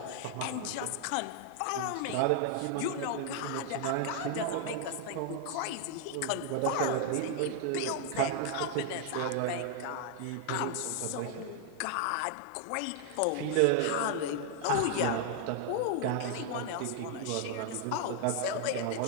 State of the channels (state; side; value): different; both; correlation 0.00